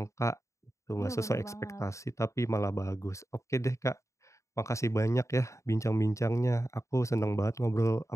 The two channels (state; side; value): late; right; 0.15 ms